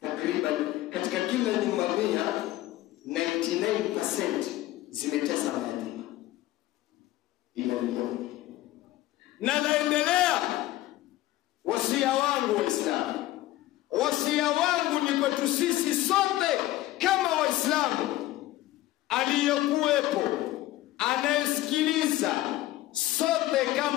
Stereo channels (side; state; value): right; quieter; 16.0 dB